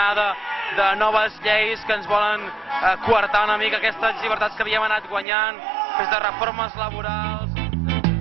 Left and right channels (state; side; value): drops out; left; at 5.2 s